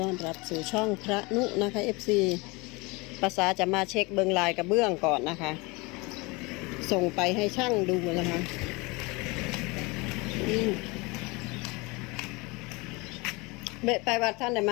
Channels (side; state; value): right; quieter; 25.6 dB